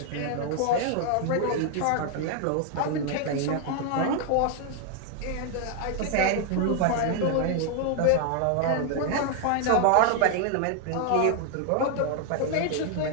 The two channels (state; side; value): different; both; correlation 0.00